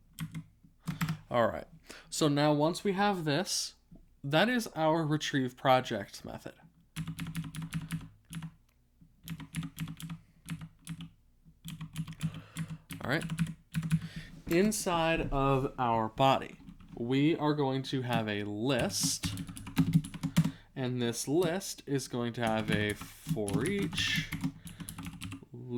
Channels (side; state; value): both; identical; correlation 1.00